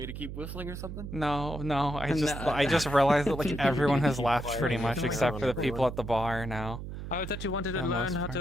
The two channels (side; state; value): right; noise; hum, 8 dB below the sound